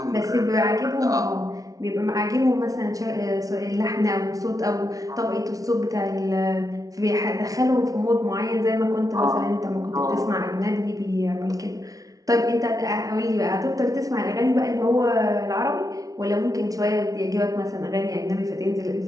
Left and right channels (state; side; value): late; left; 0.18 ms